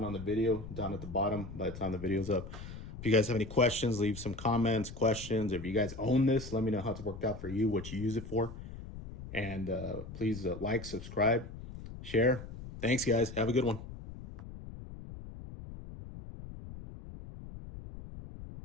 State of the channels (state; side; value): noise; left; rumble, 12 dB below the sound